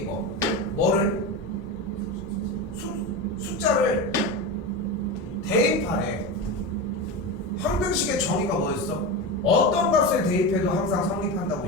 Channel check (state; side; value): normal; both; correlation 0.21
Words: 뭐를? 숫자를 대입하래. 항등식의 정의가 뭐였어? 어떤 값을 대입해도 항상